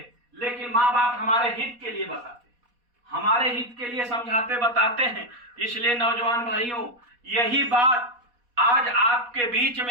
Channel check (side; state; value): left; late; 4.1 ms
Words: लेकिन माँ बाप हमारे हित के लिए बताते हैं, हमारे हित के लिए समझाते बताते हैं। इसलिए नौजवान भाइयों, यही बात आज आपके बीच